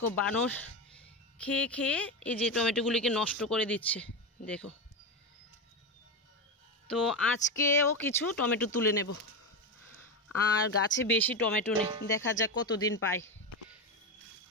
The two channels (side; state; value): both; normal; correlation 0.15